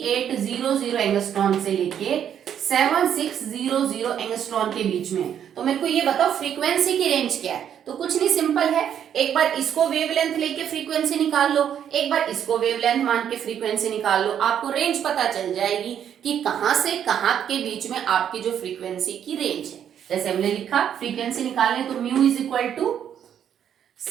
एंगस्ट्रॉन से लेके 7600 एंगस्ट्रॉन के बीच में। तो मेरे को ये बताओ फ्रीक्वेंसी की रेंज क्या है। तो कुछ नहीं, सिंपल है, एक बार इसको वेवलेंथ लेके फ्रीक्वेंसी निकाल लो, एक बार इसको वेवलेंथ मान के फ्रीक्वेंसी निकाल लो, आपको रेंज पता चल जाएगी कि कहां से कहां के बीच में आपकी जो फ्रीक्वेंसी की रेंज है। जैसे हमने लिखा फ्रीक्वेंसी निकालने तो mu is equal to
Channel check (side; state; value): left; quieter; 9.2 dB